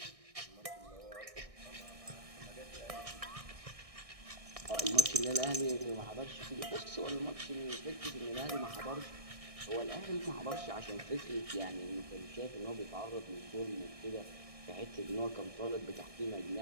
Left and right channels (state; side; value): late; left; 1.6 ms